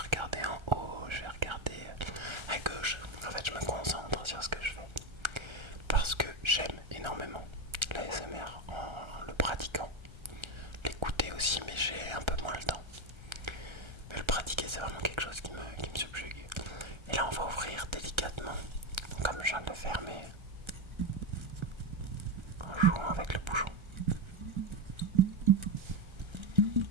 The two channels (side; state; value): left; late; 1.3 ms